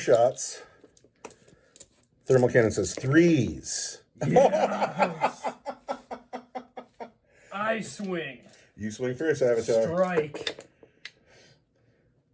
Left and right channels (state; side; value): identical; both; correlation 1.00